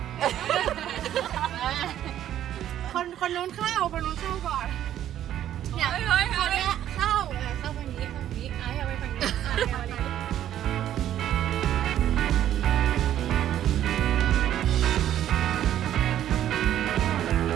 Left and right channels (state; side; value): quieter; left; 11.5 dB